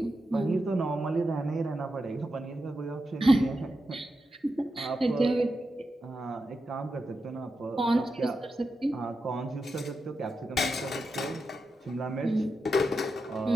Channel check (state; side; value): normal; both; correlation 0.88